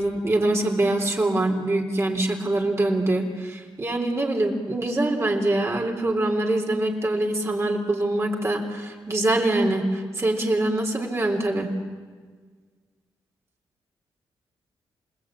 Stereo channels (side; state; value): both; normal; correlation 0.86